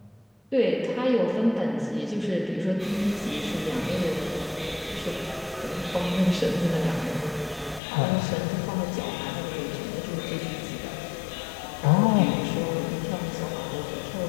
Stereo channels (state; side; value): drops out; right; at 7.8 s